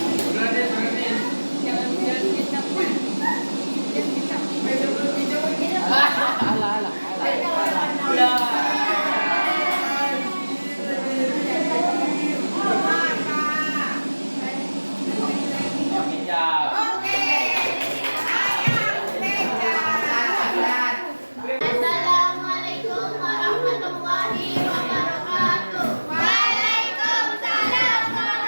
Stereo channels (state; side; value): inverted; both; correlation -1.00